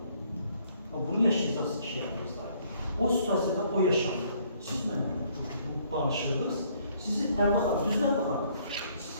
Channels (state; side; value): inverted; both; correlation -0.64